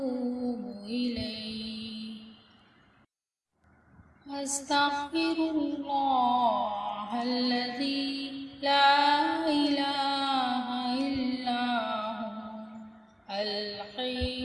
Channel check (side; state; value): both; identical; correlation 1.00